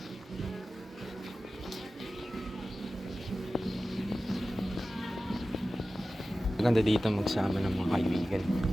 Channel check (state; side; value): normal; both; correlation 0.95